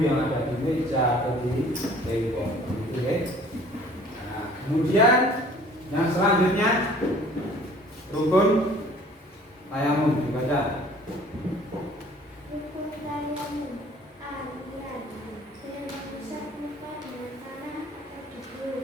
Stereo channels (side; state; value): both; normal; correlation 0.52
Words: yang ada di meja atau di tembok, gitu, ya. Nah, kemudian yang selanjutnya rukun tayamum dibaca. Rukun tayamum. A. Niat. B. Mengusap muka dengan tanah atau